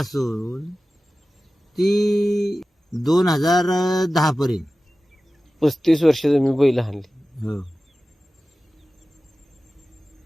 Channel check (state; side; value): normal; both; correlation 0.96